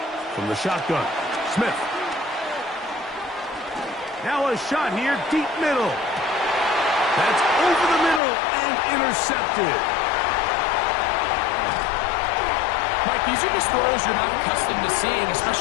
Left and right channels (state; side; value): drops out; right; at 8.2 s